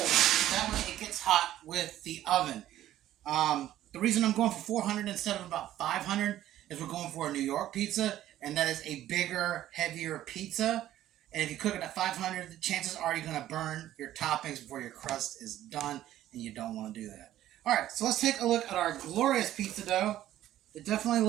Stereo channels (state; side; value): quieter; left; 13.1 dB